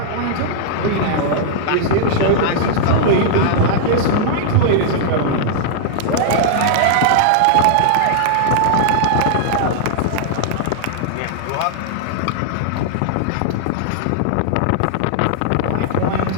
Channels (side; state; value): both; different; correlation -0.01